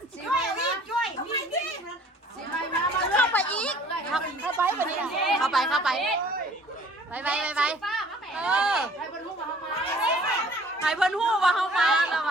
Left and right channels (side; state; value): both; normal; correlation 0.53